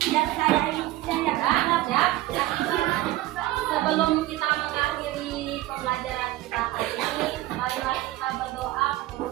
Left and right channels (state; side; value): quieter; left; 16.7 dB